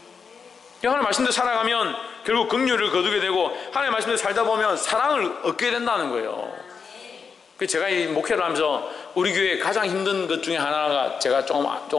하나님의 말씀대로 살아가면 결국 긍휼을 거두게 되고, 하나님의 말씀대로 살다 보면 사랑을 얻게 된다는 거예요. 제가 이 목회를 하면서 우리 교회에 가장 힘든 것 중에 하나가 제가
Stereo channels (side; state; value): right; quieter; 5.7 dB